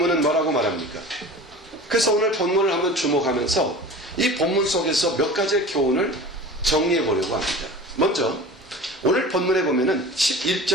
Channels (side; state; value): both; normal; correlation 0.38